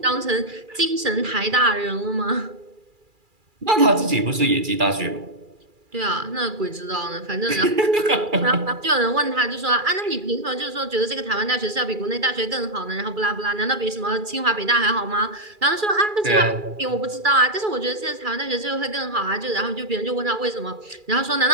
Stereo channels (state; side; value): late; left; 2.4 ms